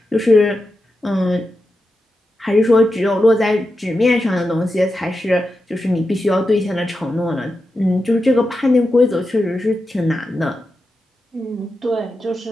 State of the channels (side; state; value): both; normal; correlation 0.89